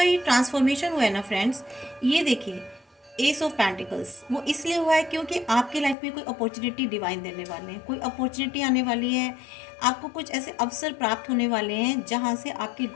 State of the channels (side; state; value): right; drops out; at 6.0 s